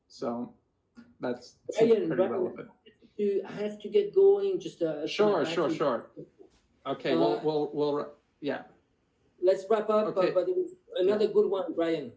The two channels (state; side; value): identical; both; correlation 1.00